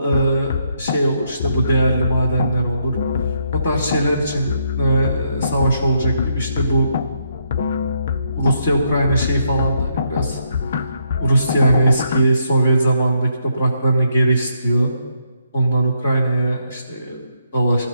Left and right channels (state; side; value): inverted; both; correlation -0.76